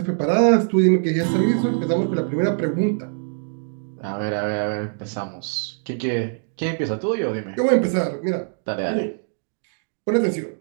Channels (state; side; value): silent; left; digital silence